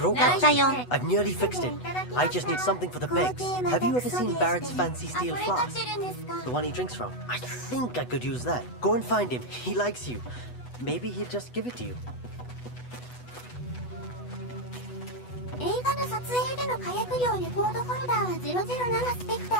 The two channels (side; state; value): right; late; 8.1 ms